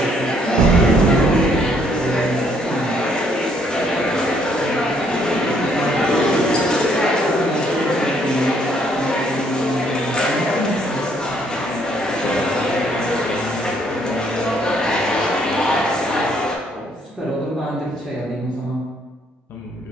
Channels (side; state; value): both; normal; correlation 0.67